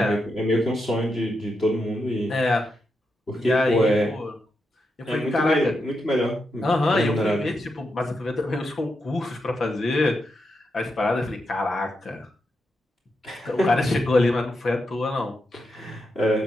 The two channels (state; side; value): normal; both; correlation 0.85